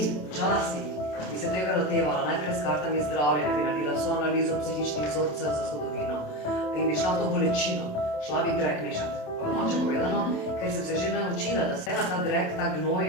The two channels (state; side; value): late; right; 27 ms